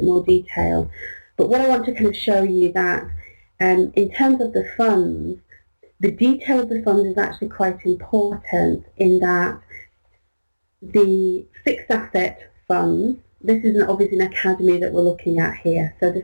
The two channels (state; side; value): inverted; both; correlation -1.00